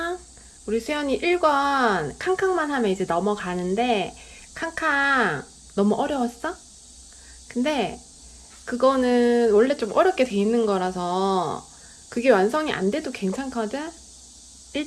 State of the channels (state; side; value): identical; both; correlation 1.00